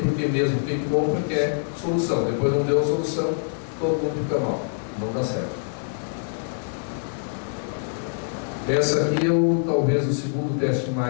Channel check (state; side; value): silent; right; 62 dB below the other